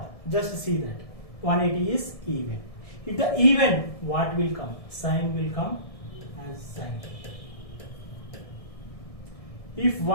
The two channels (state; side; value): late; right; 1.7 ms